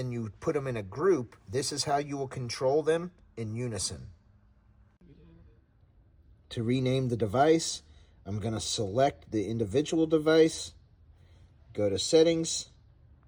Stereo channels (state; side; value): identical; both; correlation 1.00